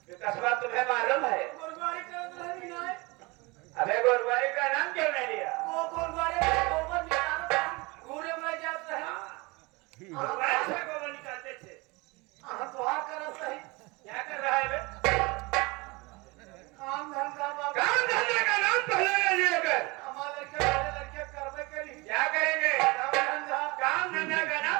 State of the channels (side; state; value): left; quieter; 25.3 dB